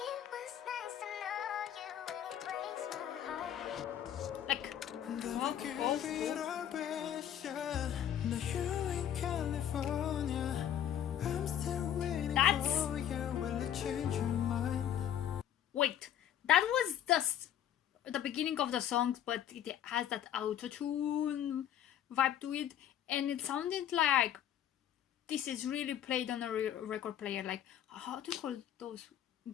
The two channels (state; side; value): quieter; right; 10.4 dB